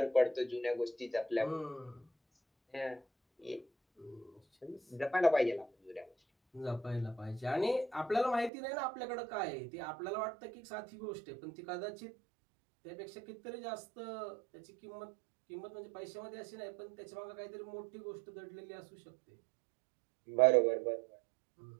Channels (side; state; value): left; drops out; at 8.5 s